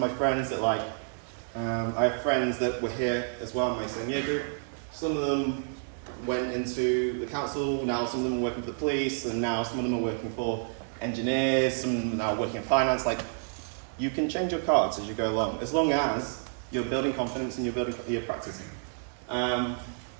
my friends that I have friends that were here as well in my same year group. Some of them went into the council, now some of them are working for the police, and now some of them are working for engineers, some of them are now working in finance. Like, you can change your cards as you go along, as long as you're building confidence and you're practicing.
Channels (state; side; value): silent; left; digital silence